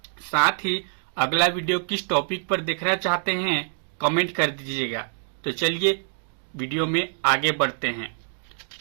साथ ही अगला वीडियो किस टॉपिक पर देखना चाहते हैं कमेंट कर दीजिएगा। तो चलिए वीडियो में आगे बढ़ते हैं।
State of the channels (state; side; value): silent; left; digital silence